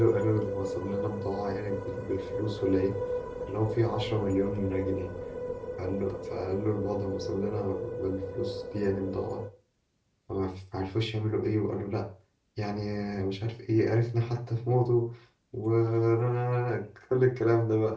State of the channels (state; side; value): identical; both; correlation 1.00